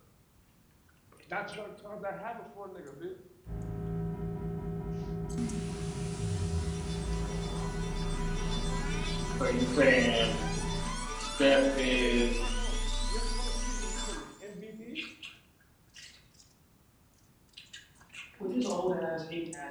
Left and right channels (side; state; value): both; identical; correlation 1.00